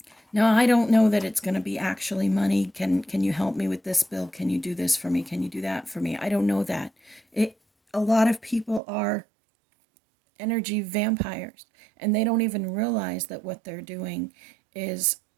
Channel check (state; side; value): drops out; left; at 8.8 s